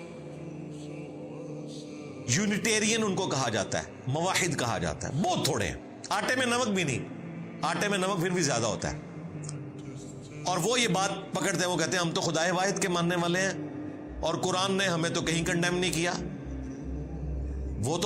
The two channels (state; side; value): identical; both; correlation 1.00